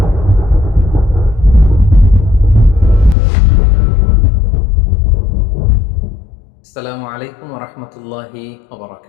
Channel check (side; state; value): right; drops out; at 3.2 s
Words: আসসালামু আলাইকুম ওয়া রাহমাতুল্লাহি ওয়া